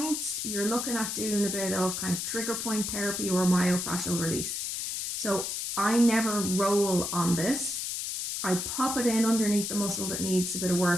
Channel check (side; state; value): left; noise; hiss, 3 dB below the sound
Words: You're looking at doing a bit of kind of trigger point therapy or myofascial release. So I never roll on this. I pop it in underneath the muscle that needs a bit of